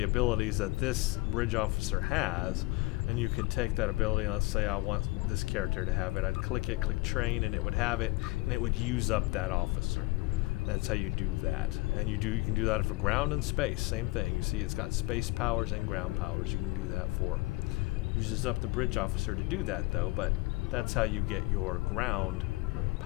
abilities that this bridge officer has, and you can take that ability, and let's say I want this character to have it. I'd click it, click train, and it would have it, and it would use up that officer. That's how you do that. And you can do that for ground and space, same thing. You see it's got space powers and ground powers you can do that for. Uses up the bridge officer to do that though, but that's how you get your ground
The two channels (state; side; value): quieter; right; 22.6 dB